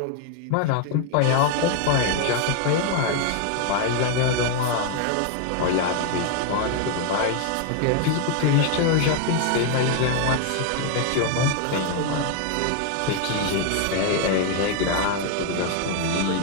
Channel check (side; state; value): both; different; correlation 0.00